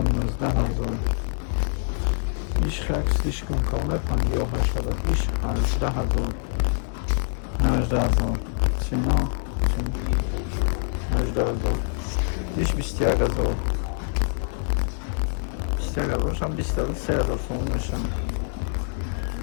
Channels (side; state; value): right; silent; 62 dB below the other